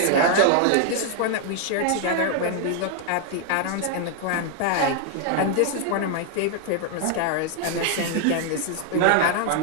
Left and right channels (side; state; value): both; different; correlation 0.00